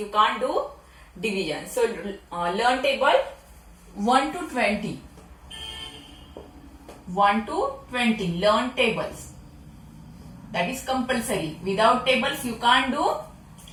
can't do division. So learn table 1 to 20. 1 to 20, learn tables. That is compulsory. Without tables you can't do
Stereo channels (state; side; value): identical; both; correlation 1.00